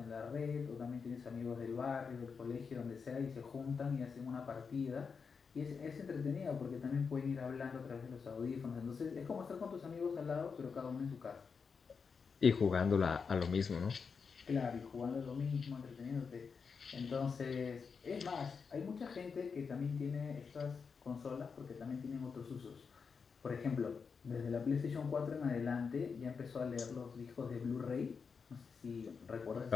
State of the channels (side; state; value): right; quieter; 5.6 dB